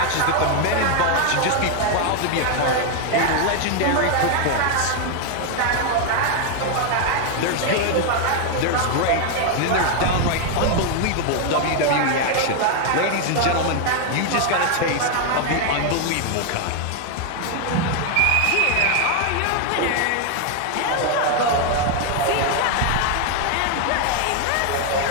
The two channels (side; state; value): both; different; correlation 0.01